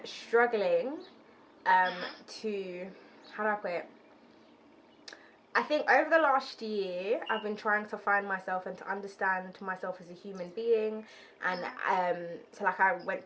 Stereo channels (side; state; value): both; identical; correlation 1.00